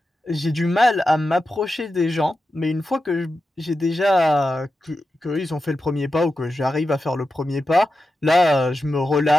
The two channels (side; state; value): both; normal; correlation 0.91